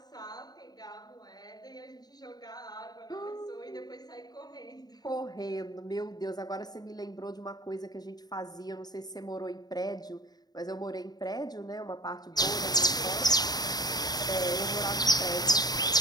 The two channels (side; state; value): right; late; 0.19 ms